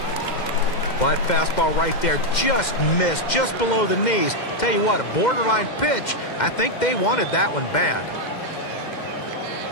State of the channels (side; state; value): right; late; 2.1 ms